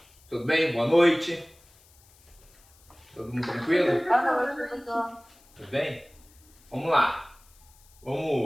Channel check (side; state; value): left; noise; hiss, 28 dB below the sound